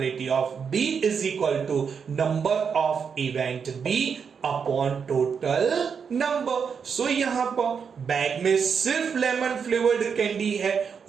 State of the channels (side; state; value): left; quieter; 6.4 dB